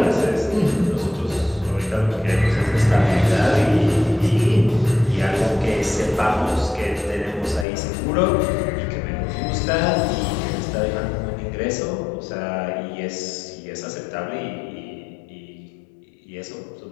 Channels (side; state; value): right; drops out; at 7.7 s